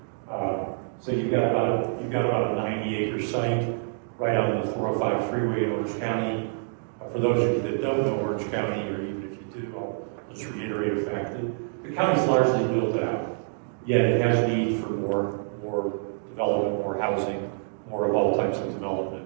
So you've got about a 90-acre site right on the 405 freeway in Orange County. For those of you that don't know Orange County, or even if you do, I'll just reiterate the fact that the county's largely built out, yet it has need for more development, more housing, more of all types of development.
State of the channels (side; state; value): left; silent; digital silence